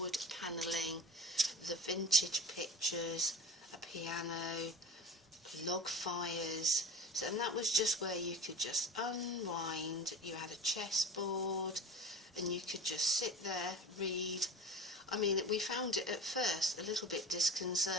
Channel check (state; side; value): normal; both; correlation 0.35